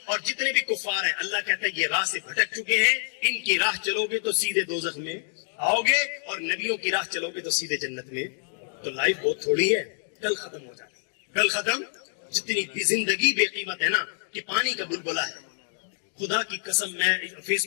اور جتنے بھی کفار ہیں، اللہ کہتا ہے یہ راہ سے بھٹک چکے ہیں، ان کی راہ چلو گے تو سیدھے دوزخ میں آؤ گے، اور نبیوں کی راہ چلو گے تو سیدھے جنت میں۔ تو لائف بہت تھوڑی ہے، کل ختم ہو جاتی ہے، کل ختم۔ جتنی بھی زندگی بے قیمت ہے نا کہ پانی کا بلبلہ ہے۔ خدا کی قسم میں فیس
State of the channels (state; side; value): silent; right; 60 dB below the other